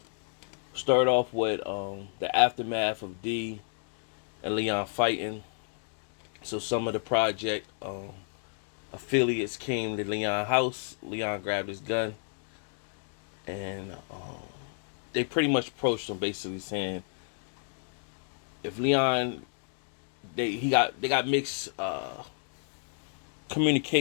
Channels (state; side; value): silent; right; digital silence